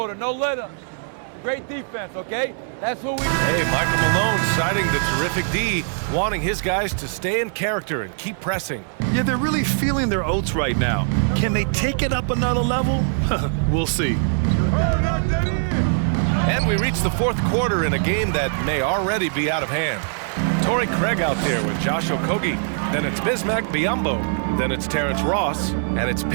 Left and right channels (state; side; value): silent; left; digital silence